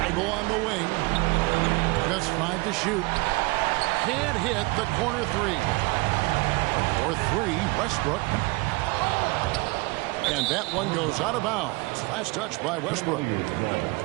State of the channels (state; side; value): quieter; left; 25.1 dB